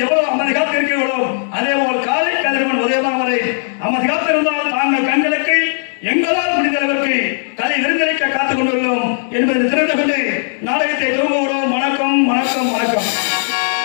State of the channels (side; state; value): right; silent; digital silence